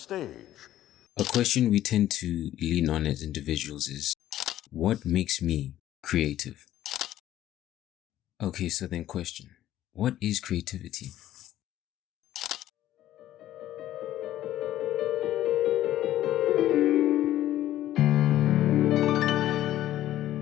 A question we tend to lean on as individuals is, what makes me creative? Okay, so then question, what is creativity?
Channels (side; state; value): right; quieter; 13.3 dB